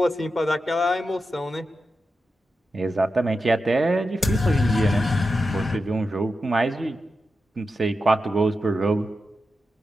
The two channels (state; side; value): normal; both; correlation 0.90